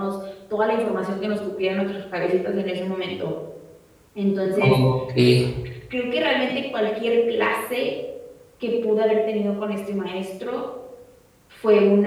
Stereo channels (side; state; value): both; identical; correlation 1.00